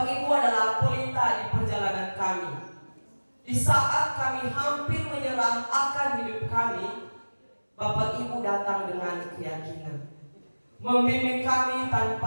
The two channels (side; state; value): both; inverted; correlation -1.00